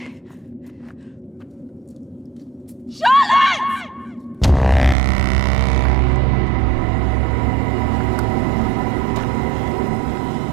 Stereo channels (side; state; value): left; drops out; at 5.0 s